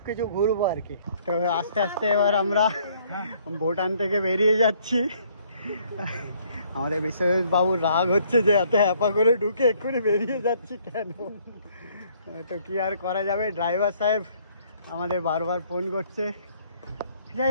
কিছু ঘুরবো আর কি। তো আস্তে আস্তে এবার আমরা ভুটান থেকে বেরিয়ে যাচ্ছি। আমাদের বিশ্বজিৎ বাবুর রাগ হচ্ছে যে এত হ্যাপা করে ঢুকে এক্ষুনি বেরিয়ে যাচ্ছি কেন। তো কি আর করা যাবে, ড্রাইভার সাহেব আমাদের বারবার ফোন করছে।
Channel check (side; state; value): both; inverted; correlation -0.63